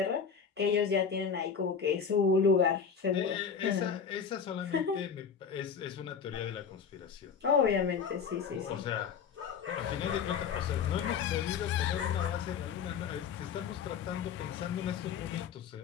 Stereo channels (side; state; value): right; quieter; 6.6 dB